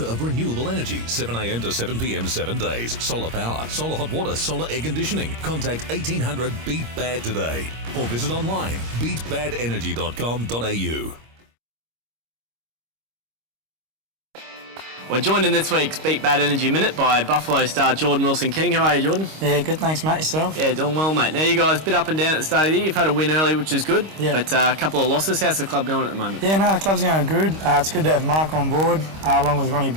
of renewable energy. 7 a.m. to 7 p.m. 7 days. Solar power, solar hot water, solar air conditioning. Contact 1800 Beat Bad today or visit online beatbadenergy.com.au. We're joined in this week's Beat Bad Energy Minute by Buffalo star Jordan Wilson-King. How are you, Jordan? Yeah, good, thanks, mate. Yourself? Yeah, doing well, mate. Now, you guys a bit up and down at the start of the year. You've had a win early, which is good, but a couple of losses. How's the club going at the moment? Yeah, no, the club's going good. It's good to have Mark on board, along with Ronnie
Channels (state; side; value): late; left; 26 ms